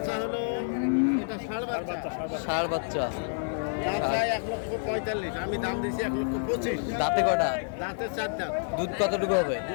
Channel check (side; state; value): right; silent; 59 dB below the other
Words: হলো এটা ষাঁড় বাচ্চা। ষাঁড় বাচ্চা। দাম চাই 1,45,000, আমি দাম দিয়েছি 1,25,000। দাঁতে কটা? দাঁতে 4 দাঁত। দুধ কতটুকু হবে?